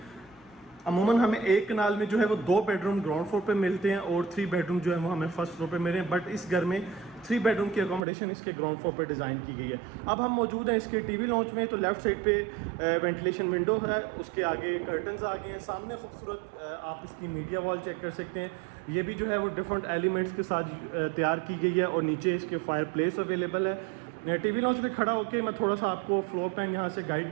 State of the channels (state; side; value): drops out; left; at 8.0 s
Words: अमूमन हमें एक कनाल में जो है वो 2 बेडरूम ग्राउंड फ्लोर पे मिलते हैं और 3 बेडरूम जो है वो हमें फर्स्ट फ्लोर पे मिले हैं। बट इस घर में 3 बेडरूम की अकोमोडेशन इसके ग्राउंड फ्लोर पे डिज़ाइन की गई है। अब हम मौजूद हैं इसके टीवी लॉन्च में। तो लेफ्ट साइड पे वेंटिलेशन विंडो है, उसके आगे कर्टन्स आ गए हैं। सामने खूबसूरत आप इसकी मीडिया वॉल चेक कर सकते हैं। ये भी जो है वो डिफरेंट एलिमेंट्स के साथ तैयार की गई है। और नीचे इसके फायर प्लेस अवेलेबल है। टीवी लॉन्च में खड़ा होकर मैं थोड़ा सा आपको फ्लोर प्लान यहाँ से गाइड